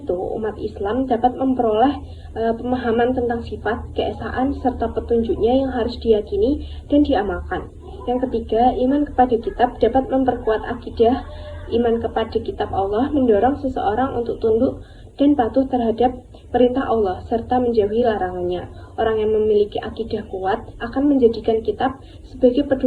umat Islam dapat memperoleh pemahaman tentang sifat, keesaan, serta petunjuknya yang harus diyakini dan diamalkan. Yang ketiga, iman kepada kitab dapat memperkuat akidah. Iman kepada kitab Allah mendorong seseorang untuk tunduk dan patuh terhadap perintah Allah serta menjauhi larangannya. Orang yang memiliki akidah kuat akan menjadikan kitab sebagai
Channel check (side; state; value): both; identical; correlation 1.00